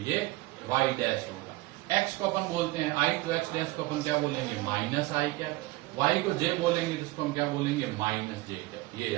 ये y डैश होगा। x को अपन बोलते हैं i, तो x डैश को अपन क्या बोलेंगे -i क्या, y को j बोलेंगे तो इसको हम क्या बोलेंगे -j क्या, ये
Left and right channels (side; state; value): left; quieter; 20.2 dB